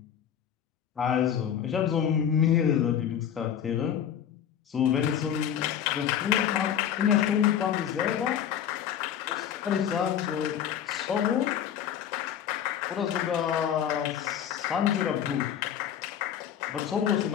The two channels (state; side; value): quieter; right; 9.3 dB